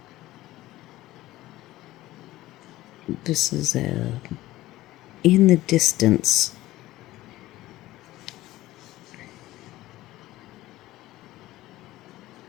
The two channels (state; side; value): quieter; right; 16.5 dB